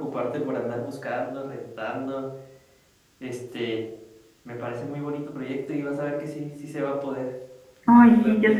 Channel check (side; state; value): both; identical; correlation 1.00